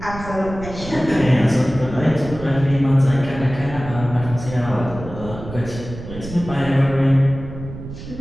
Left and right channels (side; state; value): right; noise; rumble, 11 dB below the sound